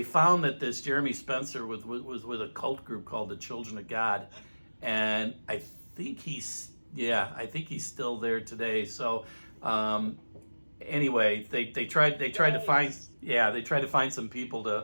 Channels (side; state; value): both; inverted; correlation -1.00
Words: found that this Jeremy Spencer was with a cult group called the Children of God, and I think he's still there today. So anyway, they tried to find some people